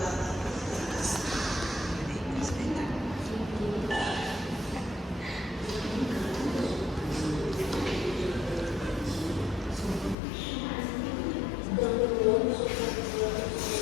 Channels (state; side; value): drops out; right; at 10.2 s